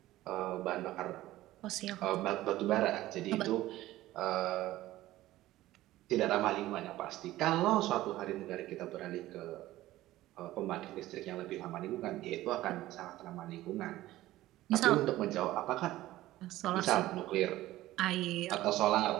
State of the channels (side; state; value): left; quieter; 15.9 dB